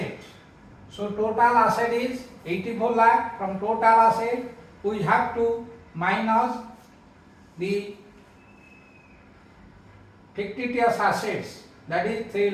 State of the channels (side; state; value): both; identical; correlation 1.00